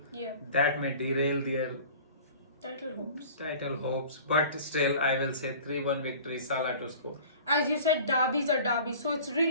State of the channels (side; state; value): both; inverted; correlation -0.44